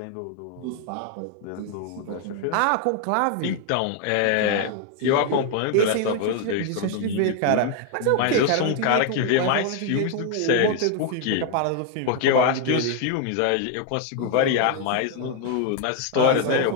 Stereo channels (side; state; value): both; different; correlation 0.00